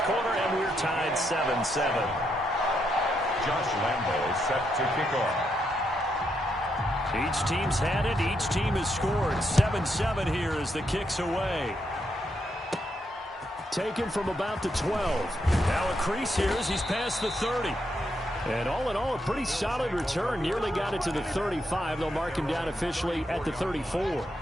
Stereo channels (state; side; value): normal; both; correlation 0.79